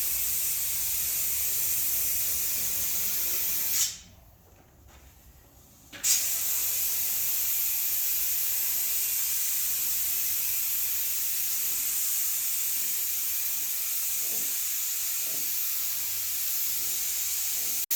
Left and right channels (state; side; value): identical; both; correlation 1.00